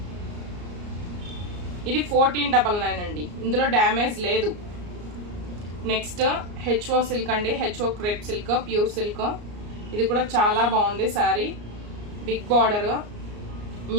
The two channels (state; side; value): late; left; 34 ms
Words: ఇది 1499 అండి. ఇందులో డ్యామేజ్ లేదు. నెక్స్ట్ హెచ్ఓ సిల్క్ అండి. HO crepe silk, pure silk. ఇది కూడా చాలా బాగుంది sari. Big border,